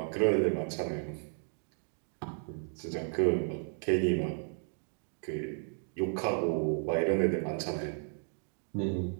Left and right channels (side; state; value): left; silent; 55 dB below the other